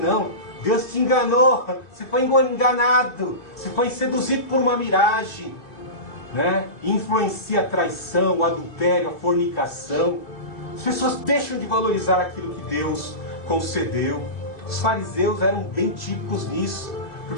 Deus te enganou, você foi enganado, você foi seduzido por uma miragem, né? Influencia a traição, o adultério, a fornicação. As pessoas deixam de valorizar aquilo que Deus concedeu. Os fariseus eram bem típicos nisso,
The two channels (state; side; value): late; right; 2.5 ms